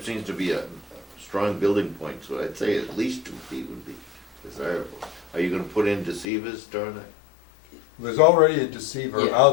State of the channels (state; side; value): drops out; right; at 6.2 s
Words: seems to be a strong building point, so I'd say at least 2 feet would be desirable. Are you gonna put in deceivers during that? There's already a deceiver